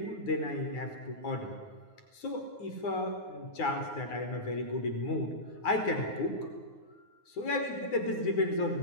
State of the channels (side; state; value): right; late; 9.5 ms